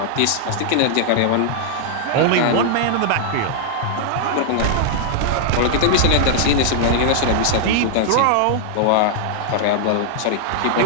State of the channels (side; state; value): both; different; correlation -0.01